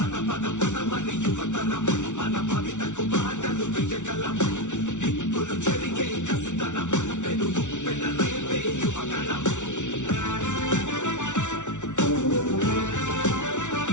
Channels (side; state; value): right; late; 0.85 ms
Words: పదమని యువతరం మన భవితకు బాటలు వేయగలం. నిప్పులు చెరిగే కసితనం పెనుగు పెనరేపే యువగణం.